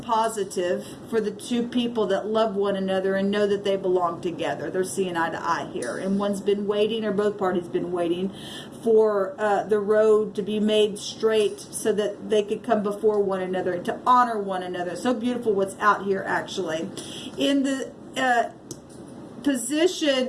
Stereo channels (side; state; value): both; identical; correlation 1.00